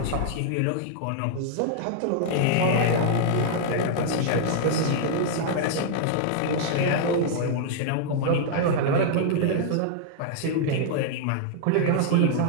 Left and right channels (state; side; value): different; both; correlation -0.01